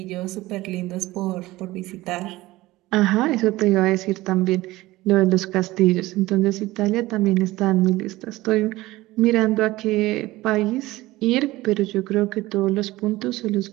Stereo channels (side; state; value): left; quieter; 18.4 dB